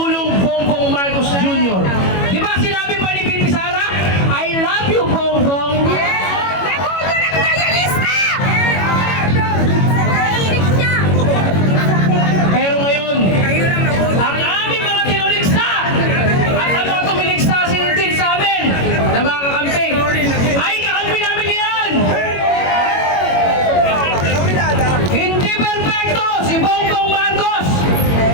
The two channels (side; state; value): right; late; 21 ms